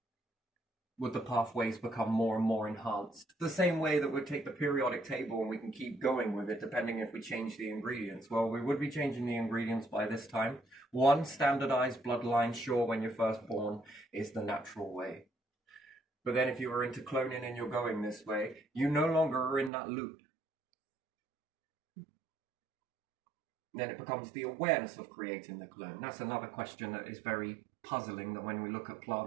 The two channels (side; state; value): left; drops out; at 19.7 s